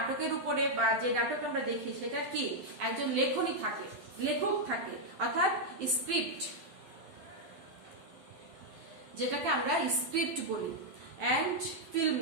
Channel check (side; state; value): left; late; 12 ms